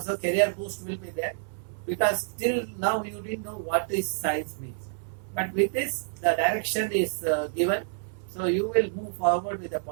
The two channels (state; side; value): silent; left; 59 dB below the other